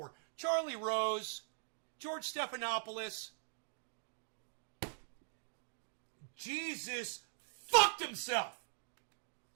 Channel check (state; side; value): silent; left; digital silence